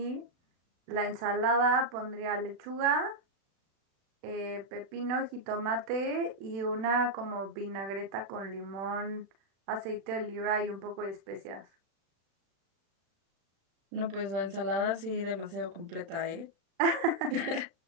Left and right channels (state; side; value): late; left; 36 ms